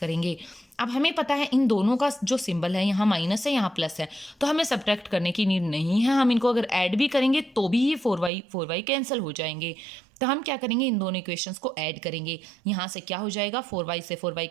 अब हमें पता है इन दोनों का जो सिंबल है, यहाँ माइनस है यहाँ प्लस है, तो हमें सब्ट्रैक्ट करने की नीड नहीं है। हम इनको अगर ऐड भी करेंगे तो भी ये 4y कैंसिल हो जाएंगे। तो हम क्या करेंगे, इन दोनों इक्वेशंस को ऐड करेंगे। यहाँ से क्या हो जाएगा, 4y से 4y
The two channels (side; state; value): left; drops out; at 8.3 s